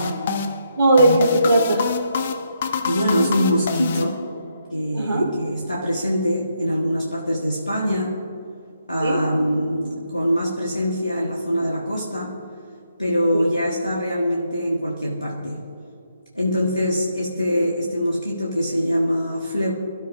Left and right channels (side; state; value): both; inverted; correlation -0.79